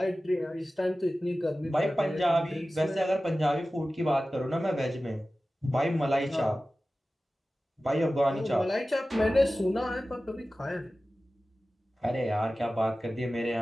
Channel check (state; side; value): normal; both; correlation 0.96